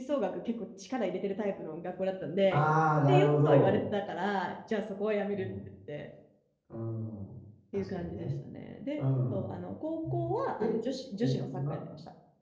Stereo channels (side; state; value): both; identical; correlation 1.00